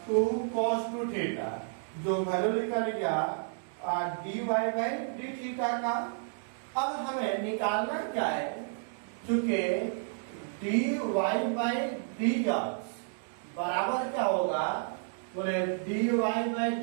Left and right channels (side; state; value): left; silent; digital silence